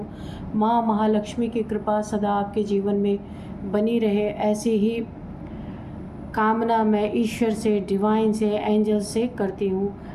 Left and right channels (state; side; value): identical; both; correlation 1.00